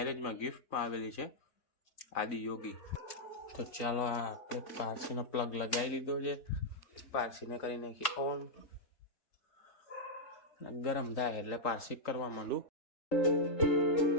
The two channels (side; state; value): right; late; 3.9 ms